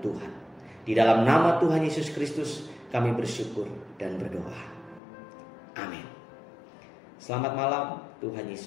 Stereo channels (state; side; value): drops out; right; at 5.0 s